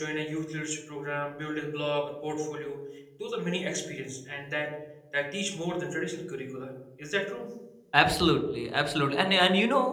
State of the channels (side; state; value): both; identical; correlation 1.00